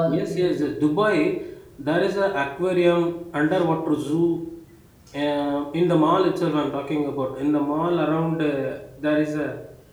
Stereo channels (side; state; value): both; identical; correlation 1.00